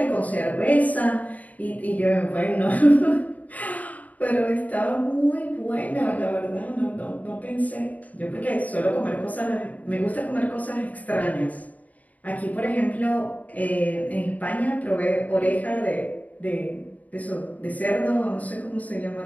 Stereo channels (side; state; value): right; late; 0.073 ms